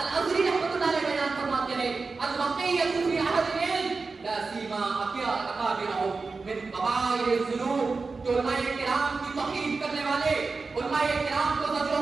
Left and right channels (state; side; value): quieter; left; 4.2 dB